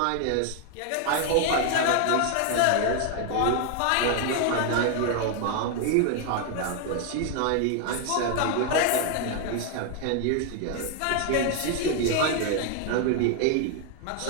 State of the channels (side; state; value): both; different; correlation 0.00